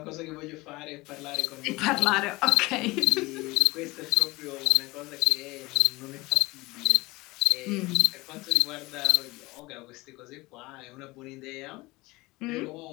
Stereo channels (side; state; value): right; quieter; 21.7 dB